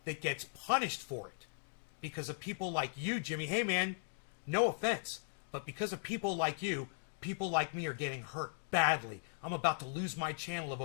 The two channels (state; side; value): silent; right; digital silence